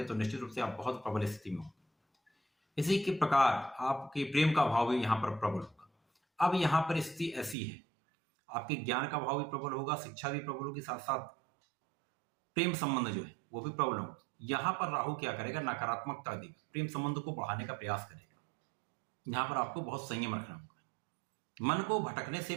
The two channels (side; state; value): left; drops out; at 7.6 s